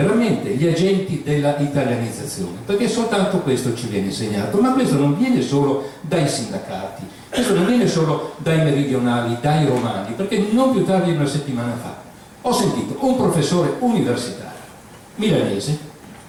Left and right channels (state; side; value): identical; both; correlation 1.00